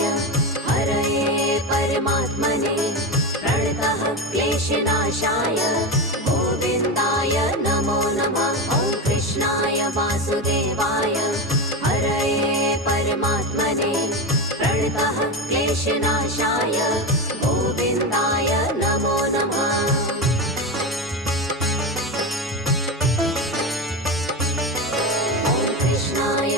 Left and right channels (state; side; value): normal; both; correlation 0.18